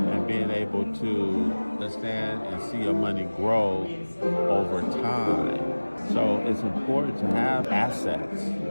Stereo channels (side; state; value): both; inverted; correlation -1.00